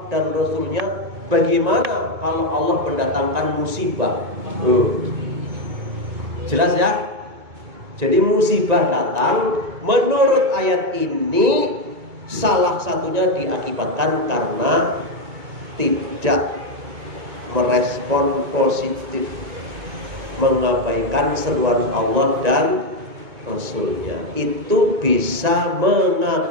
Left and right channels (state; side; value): late; left; 2.2 ms